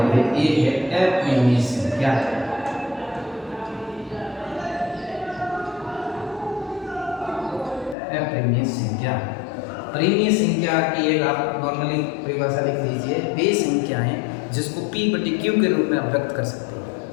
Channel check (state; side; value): drops out; right; at 8.0 s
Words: ये है अपरिमेय संख्या। अपरिमेय संख्या, परिमेय संख्या की एक आप नॉर्मली परिभाषा लिख लीजिए, वे संख्याएं जिसको P/Q के रूप में आप व्यक्त कर सकते हैं,